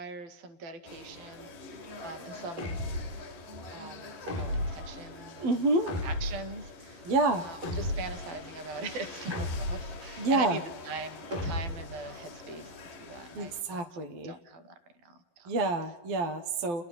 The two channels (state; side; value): late; left; 12 ms